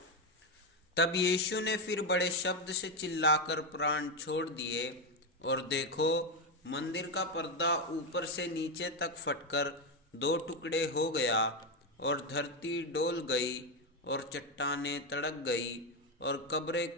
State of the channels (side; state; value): both; normal; correlation 0.08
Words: तब यीशु ने फिर बड़े शब्द से चिल्लाकर प्राण छोड़ दिए, और देखो, मंदिर का पर्दा ऊपर से नीचे तक फटकर 2 टुकड़े हो गया, और धरती डोल गई, और चट्टानें तड़क गई, और कब्रें